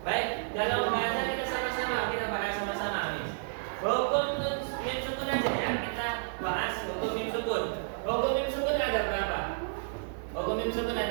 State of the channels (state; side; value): silent; left; digital silence